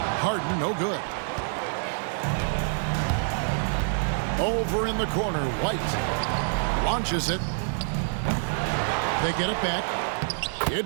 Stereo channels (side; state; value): left; silent; digital silence